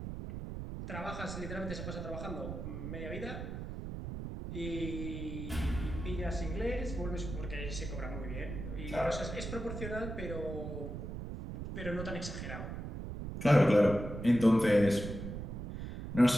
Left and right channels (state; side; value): noise; right; rumble, 7 dB below the sound